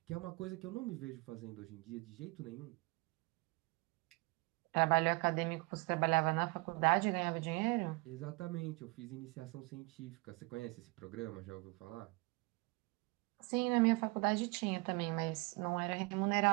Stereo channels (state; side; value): quieter; left; 26.4 dB